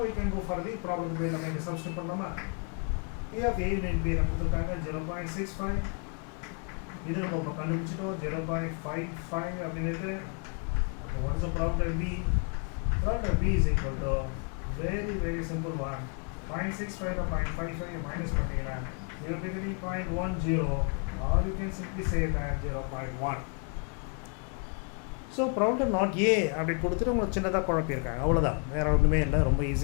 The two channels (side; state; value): right; quieter; 39.9 dB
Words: we can go for the probability நம்ம இங்கே சப்ஸ்டிட் பண்ணலாமா? P of A and B கொடுத்துருக்காங்க 0.65, இது நம்ம இப்போ கண்டுபிடிச்சிட்டோம் 0.55 அப்படின்ட்டு. அப்போ what is the probability of B? Probability of B is equal to very simple one, 0.65 or 0.55 minus பண்ணிங்கன்னா you will be getting 0.10, or you can simply say that 0.1. So problem not A அப்படி கொடுத்துட்டு உங்களுக்கு சின்னதாக குழப்பியிருக்காங்க, அவ்வளோதான், வேறு ஒன்றுமே இல்லை, ரொம்ப